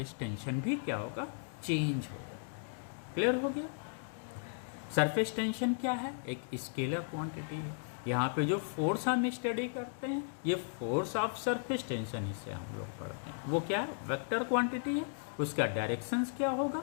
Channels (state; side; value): silent; right; digital silence